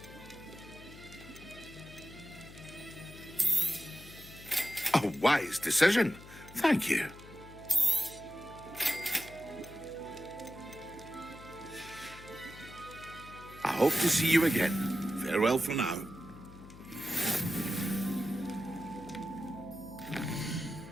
A wise decision. Thank you. I hope to see you again. Farewell for now.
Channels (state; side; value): noise; left; hum, 17 dB below the sound